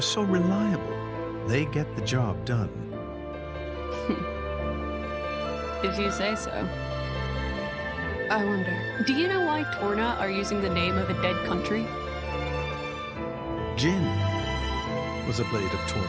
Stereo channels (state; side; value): identical; both; correlation 1.00